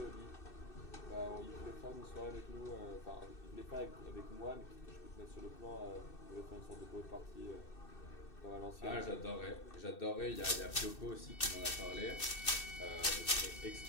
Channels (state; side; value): late; right; 2.6 ms